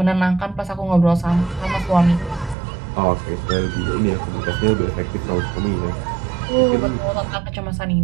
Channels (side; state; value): left; drops out; at 2.6 s